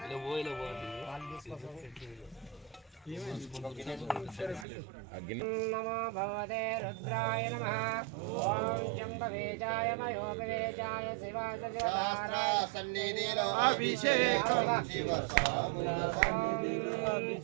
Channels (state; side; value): drops out; left; at 4.7 s